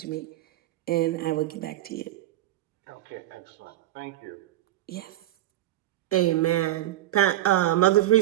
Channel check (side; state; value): left; quieter; 14.5 dB